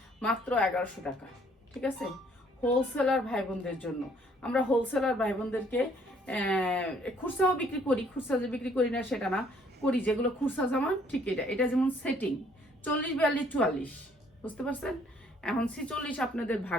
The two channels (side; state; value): both; normal; correlation 0.62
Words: মাত্র 1100 টাকা, ঠিক আছে, হোলসেলার ভাই বোনদের জন্য। আমরা হোলসেলার ভাই বোনদেরকে খুচরাও বিক্রি করি, খুচরা যে বিক্রি করি না সেটা না, করি যেগুলো খুচরা জামা, ঠিক এটা যেমন সেটিং 40 42 44, বুঝতে পারছেন। এখন 46 আপনাদের